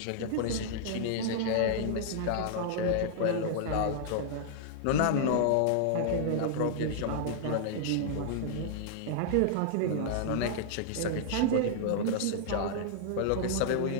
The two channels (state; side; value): different; both; correlation -0.01